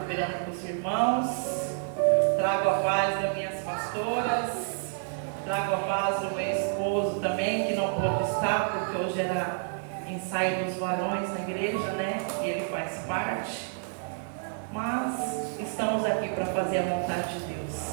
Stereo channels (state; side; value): silent; left; digital silence